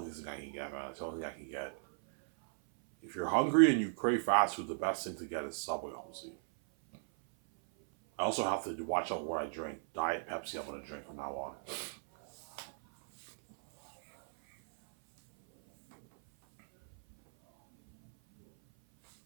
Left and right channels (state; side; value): silent; left; 54 dB below the other